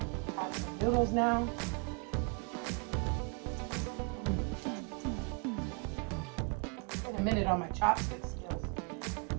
I have some noodles now. Been a minute on my chopstick skills,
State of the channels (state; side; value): quieter; left; 31.4 dB